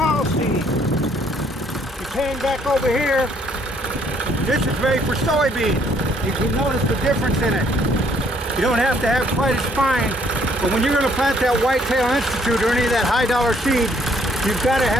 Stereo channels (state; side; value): normal; both; correlation 0.65